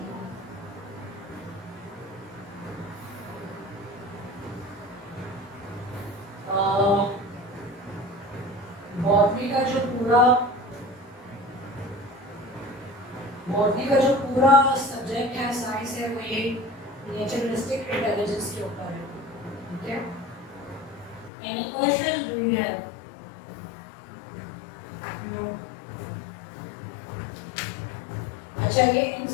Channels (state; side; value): drops out; right; at 21.3 s